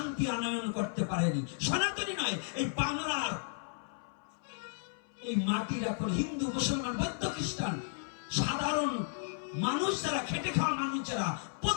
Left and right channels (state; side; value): silent; right; 55 dB below the other